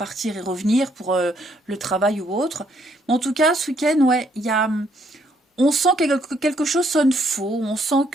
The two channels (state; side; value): normal; both; correlation 0.70